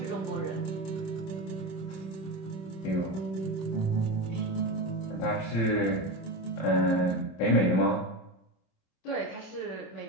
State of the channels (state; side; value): late; right; 26 ms